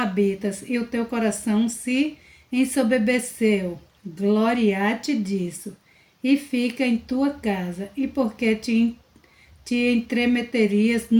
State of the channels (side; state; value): both; identical; correlation 1.00